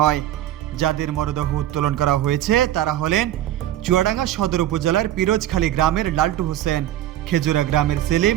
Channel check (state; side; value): quieter; left; 12.8 dB